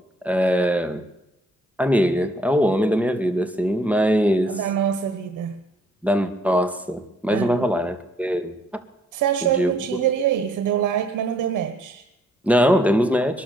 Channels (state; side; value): normal; both; correlation 0.65